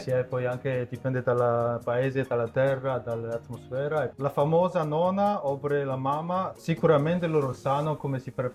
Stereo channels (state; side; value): identical; both; correlation 1.00